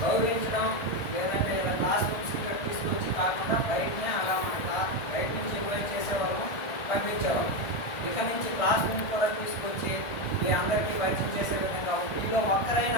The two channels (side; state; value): right; late; 1.6 ms